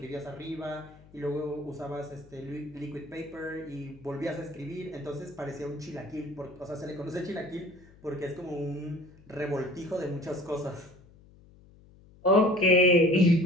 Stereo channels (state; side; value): noise; left; hum, 24 dB below the sound